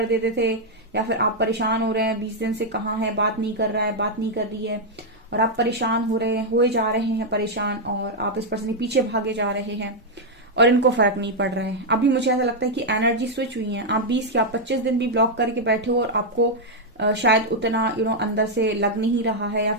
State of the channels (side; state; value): both; normal; correlation -0.02